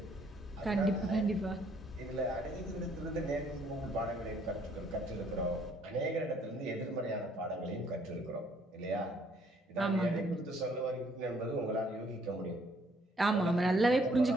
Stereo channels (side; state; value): both; normal; correlation 0.65